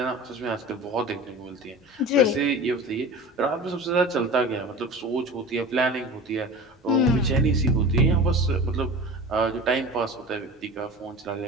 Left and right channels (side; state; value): both; normal; correlation 0.34